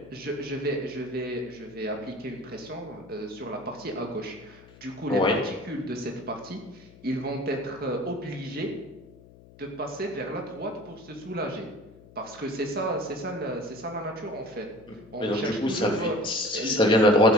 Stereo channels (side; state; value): left; noise; hum, 22 dB below the sound